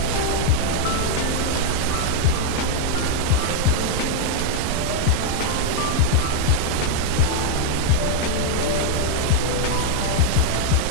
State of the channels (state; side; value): different; both; correlation 0.00